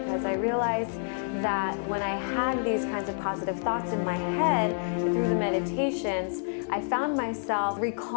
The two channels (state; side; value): silent; right; digital silence